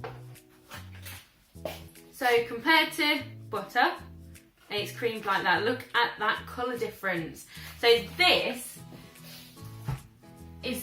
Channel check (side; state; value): both; identical; correlation 1.00